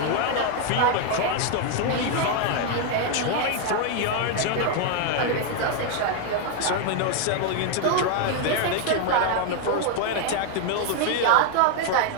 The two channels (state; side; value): different; both; correlation 0.00